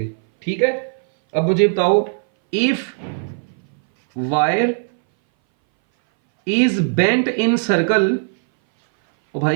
ठीक है, अब मुझे बताओ, if wire is bent in circle, ओ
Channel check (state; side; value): silent; left; 61 dB below the other